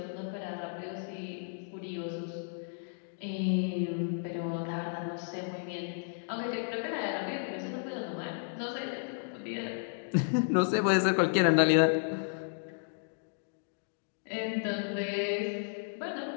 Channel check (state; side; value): silent; right; digital silence